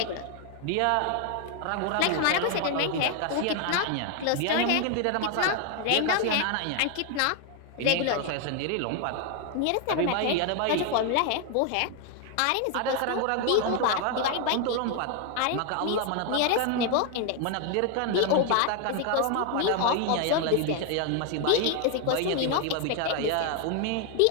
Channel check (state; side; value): different; both; correlation 0.01